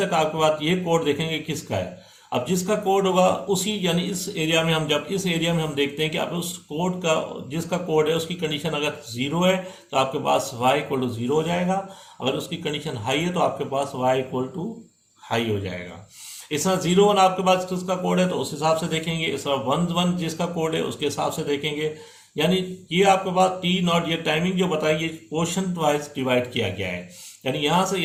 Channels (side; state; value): both; identical; correlation 1.00